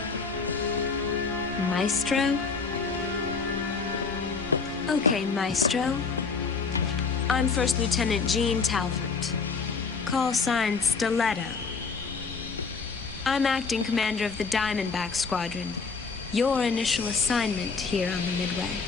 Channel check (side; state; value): right; quieter; 4.8 dB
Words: Maestro? Okay, Maestro. I'm First Lieutenant Jean Talbot. Call sign Stiletto. I'm acting commander of the Diamondback Squadron. Your initial assignment here on the Midway.